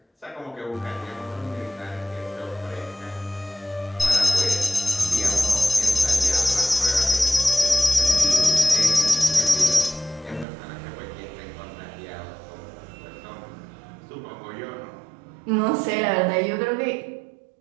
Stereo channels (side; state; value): left; drops out; at 10.5 s